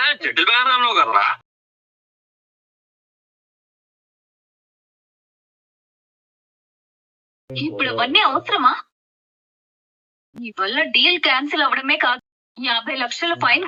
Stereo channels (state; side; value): identical; both; correlation 1.00